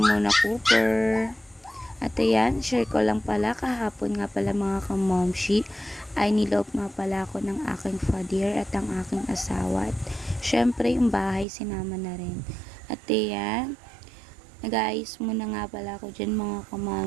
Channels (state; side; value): drops out; left; at 11.5 s